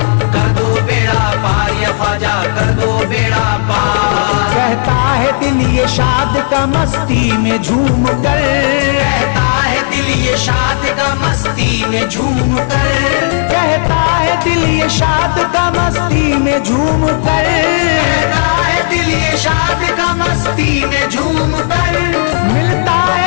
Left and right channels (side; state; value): right; silent; digital silence